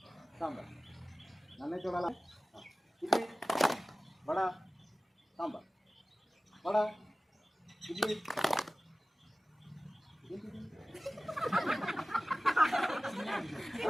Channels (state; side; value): normal; both; correlation 0.97